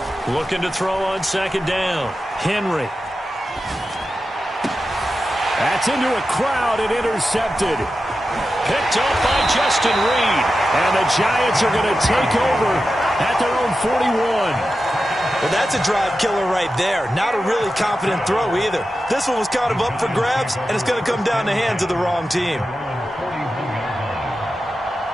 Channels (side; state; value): both; normal; correlation 0.92